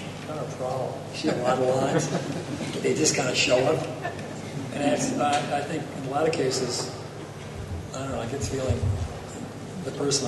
kind of a problem. You see a lot of lines, they just kind of show up. And I think in a lot of cases, I don't know, I get the feeling the person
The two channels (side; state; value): both; identical; correlation 1.00